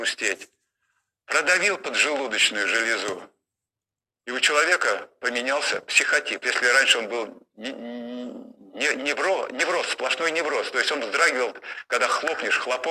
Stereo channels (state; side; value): identical; both; correlation 1.00